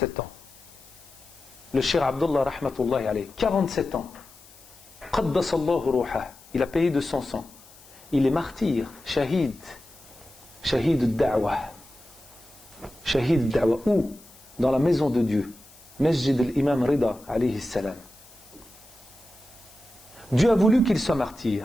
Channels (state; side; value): noise; left; hiss, 23 dB below the sound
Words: ans. Le Cheikh Abdullah rahmatullahi alayhi, 47 ans. Qaddasallahu ruhah. Il a payé de son sang. Il est martyr, shahid al-da'wah. Shahid al-da'wah. Où? Dans la maison de Dieu. Masjid al-Imam Rida alayhi salam. Dieu a voulu qu'il soit